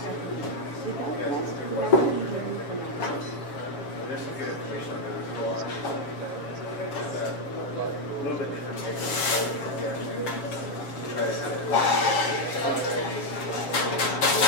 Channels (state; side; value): late; right; 7.5 ms